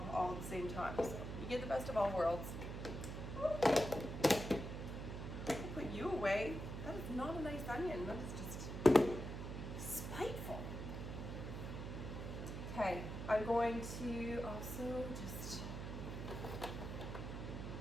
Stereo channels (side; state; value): right; noise; hum, 6 dB below the sound